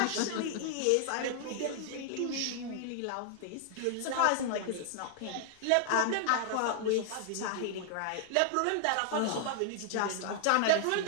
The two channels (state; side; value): different; both; correlation 0.00